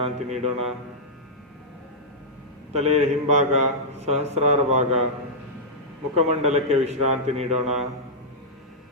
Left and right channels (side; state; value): both; normal; correlation -0.10